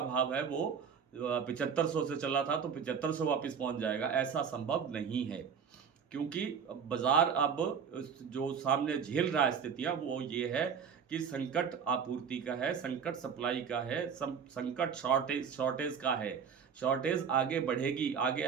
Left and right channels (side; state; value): left; quieter; 6.8 dB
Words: भाव है वो 7500 से चला था तो 7500 वापस पहुंच जाएगा, ऐसा संभव नहीं है। क्योंकि बाजार अब जो सामने झेल रहा है स्थितियाँ वो ये है कि संकट आपूर्ति का है, संकट सप्लाई का है, संकट शॉर्टेज का है। शॉर्टेज आगे बढ़ेगी, आगे